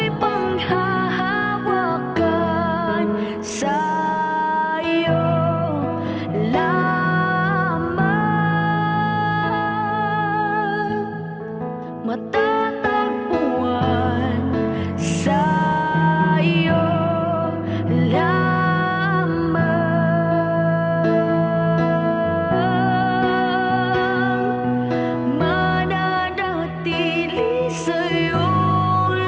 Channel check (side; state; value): both; identical; correlation 1.00